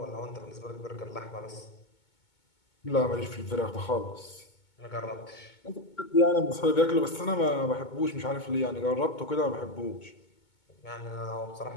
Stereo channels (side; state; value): right; late; 2.2 ms